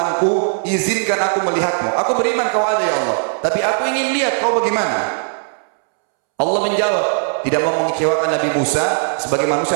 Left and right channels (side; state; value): left; silent; 67 dB below the other